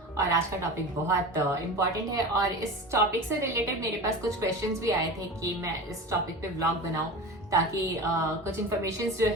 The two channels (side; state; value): both; normal; correlation 0.31